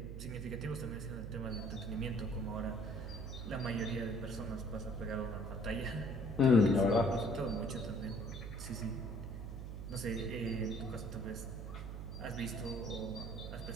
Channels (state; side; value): noise; right; hum, 7 dB below the sound